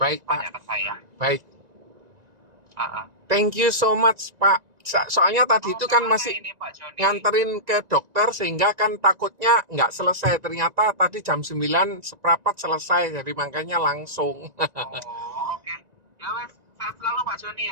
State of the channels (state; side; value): late; left; 1.9 ms